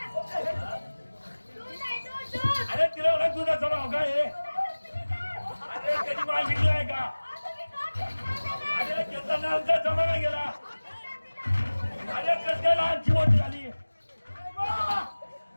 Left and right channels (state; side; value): inverted; both; correlation -1.00